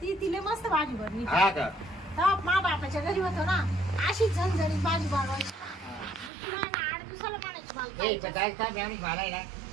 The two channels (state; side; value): drops out; left; at 6.3 s